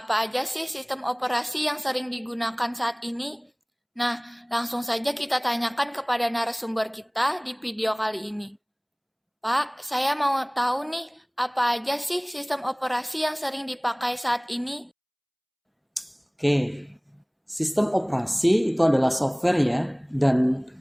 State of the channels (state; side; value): identical; both; correlation 1.00